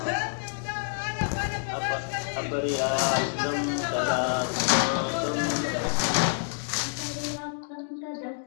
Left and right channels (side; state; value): right; silent; digital silence